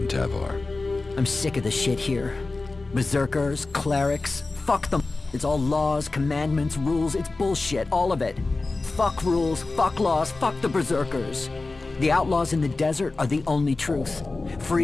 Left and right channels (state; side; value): quieter; right; 3.5 dB